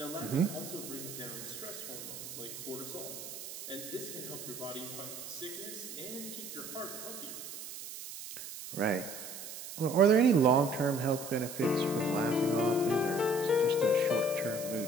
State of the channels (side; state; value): right; noise; hiss, 10 dB below the sound